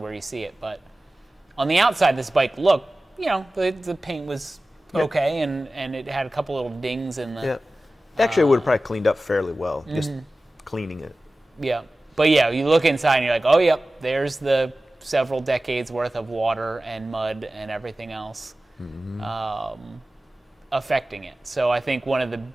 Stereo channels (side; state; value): both; normal; correlation 0.96